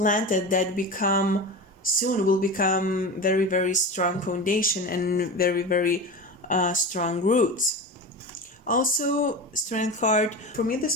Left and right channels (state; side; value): normal; both; correlation 0.27